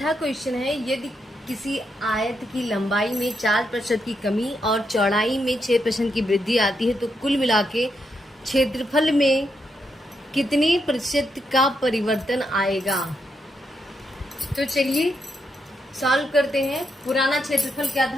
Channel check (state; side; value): normal; both; correlation 0.81